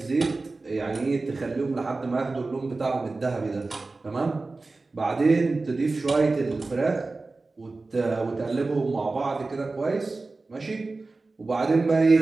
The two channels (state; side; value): quieter; left; 3.5 dB